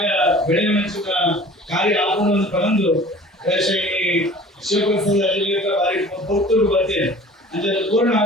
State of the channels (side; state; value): both; normal; correlation 0.45